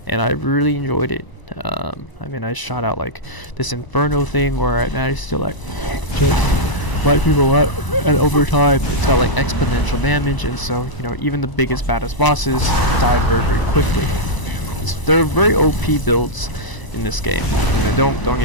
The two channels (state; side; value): late; right; 1.0 ms